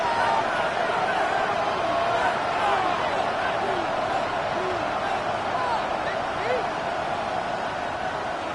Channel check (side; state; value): both; identical; correlation 1.00